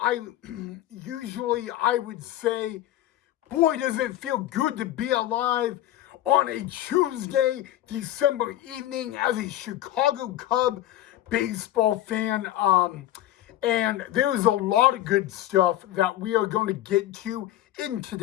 usually I would say, boy, does it feel good to be alive on a Tuesday, December evening as a Chicago Cub baseball fan. And there's a lot of good stuff that we are going to get to in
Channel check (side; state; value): right; quieter; 13.7 dB